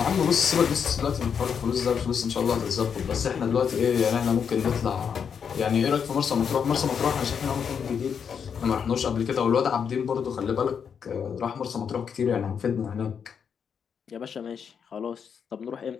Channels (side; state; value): right; quieter; 7.1 dB